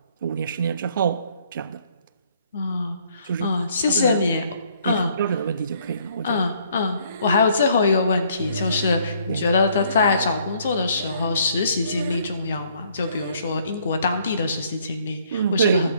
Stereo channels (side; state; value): both; inverted; correlation -0.64